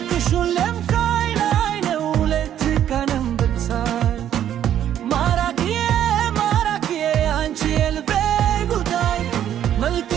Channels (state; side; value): quieter; left; 10.6 dB